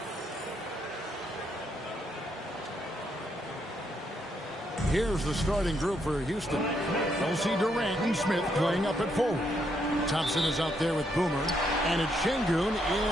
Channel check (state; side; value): normal; both; correlation 0.76